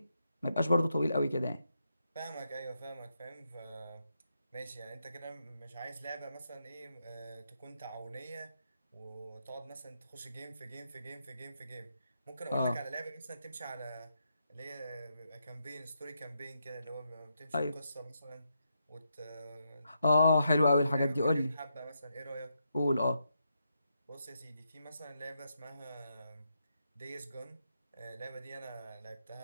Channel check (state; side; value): inverted; both; correlation -0.82